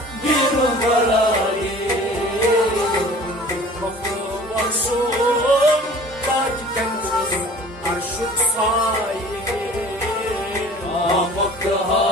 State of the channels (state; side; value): normal; both; correlation 0.46